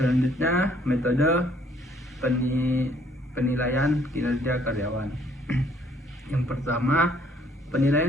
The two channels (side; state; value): both; normal; correlation 0.64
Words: metode penilaian kinerja karyawan. Yang pertama,